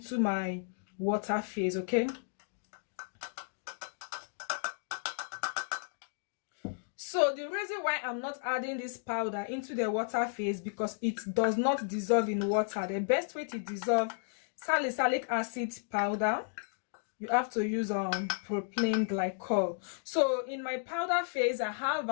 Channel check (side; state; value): right; silent; digital silence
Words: my water phase. Okay, so the reason why I'm not adding this powder into the water phase, because it does not dissolve in water. The best way to dissolve salicylic acid powder, you have to use propylene glycol. So in my powder phase, I have